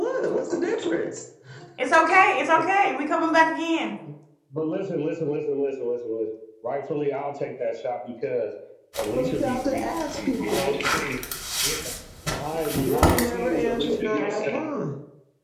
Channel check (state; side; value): identical; both; correlation 1.00